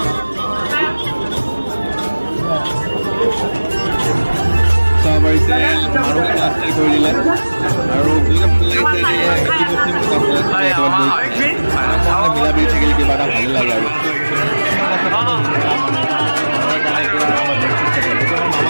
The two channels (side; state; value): both; inverted; correlation -1.00